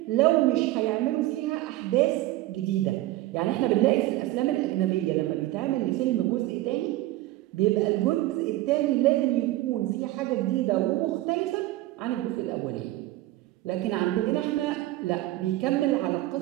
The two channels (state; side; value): quieter; left; 16.7 dB